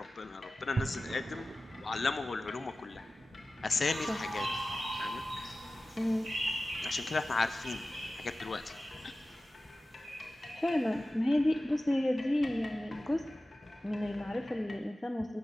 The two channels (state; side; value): normal; both; correlation 0.96